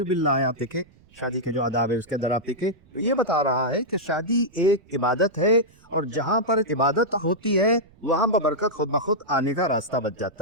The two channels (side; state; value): right; noise; rumble, 29 dB below the sound